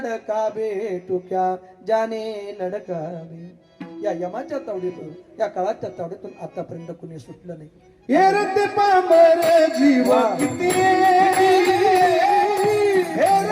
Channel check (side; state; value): both; identical; correlation 1.00